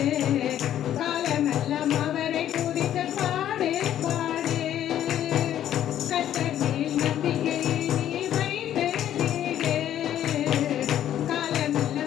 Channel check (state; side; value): quieter; right; 11.2 dB